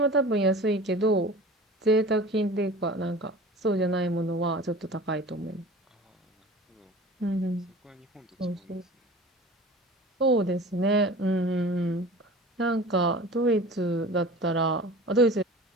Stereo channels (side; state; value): both; normal; correlation 0.39